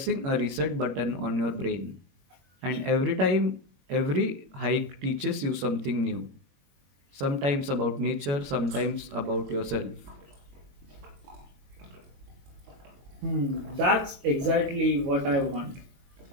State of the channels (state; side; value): late; left; 22 ms